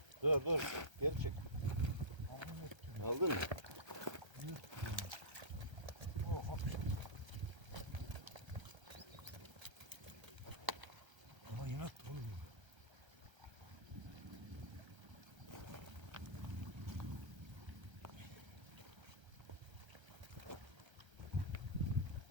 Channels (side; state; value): left; late; 1.3 ms